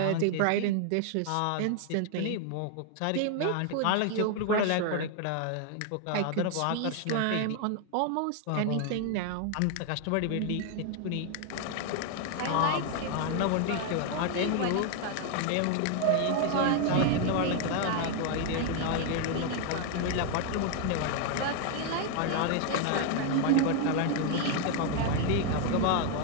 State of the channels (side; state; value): both; different; correlation 0.01